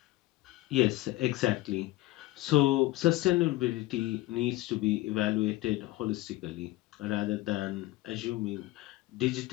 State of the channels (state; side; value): quieter; right; 17.9 dB